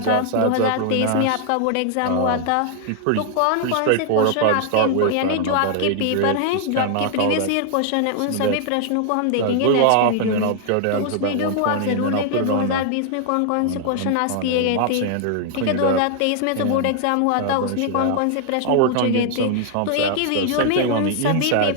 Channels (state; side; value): different; both; correlation 0.00